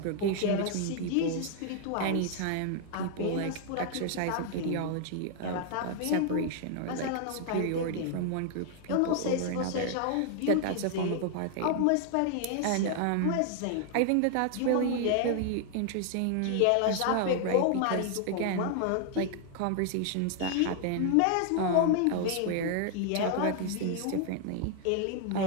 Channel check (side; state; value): both; different; correlation 0.00